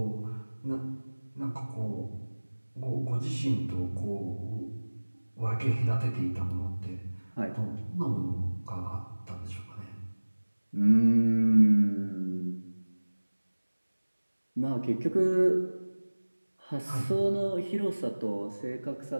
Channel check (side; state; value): both; inverted; correlation -1.00